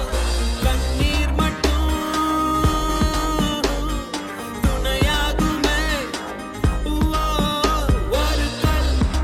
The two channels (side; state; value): both; identical; correlation 1.00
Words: கண்ணீர் மட்டும் துணையாகுமே. ஒரு கல்